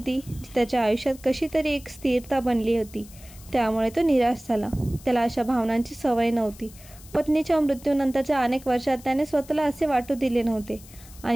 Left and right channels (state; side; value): noise; left; hiss, 21 dB below the sound